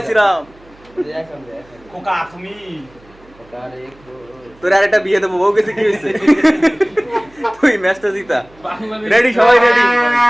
শ্রীরাম। খোকা তুমি তোর আর একটা বিয়ে দেবো, বউ গেছে কি হয়েছে? তুই ম্যাচটা জিতা। রেডি সবাই রেডি?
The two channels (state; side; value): noise; right; hum, 28 dB below the sound